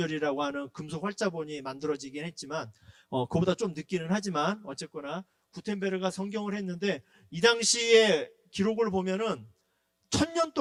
하는 금속 활자본이 만들어지긴 했지만 그보다 좀 늦기는 하지만 어쨌거나 구텐베르가 성경을 했는데 이 당시에 기록을 보면은 1000년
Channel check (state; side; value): identical; both; correlation 1.00